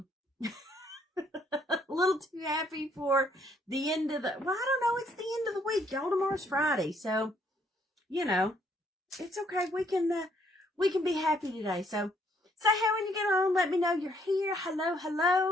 little too happy for the end of the, well, I don't know, it's the end of the week, y'all. Tomorrow's Friday, so, you know, it's okay. We can be happy today. So, say hey when you get on. Let me know you're here. Hello,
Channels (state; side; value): normal; both; correlation 0.68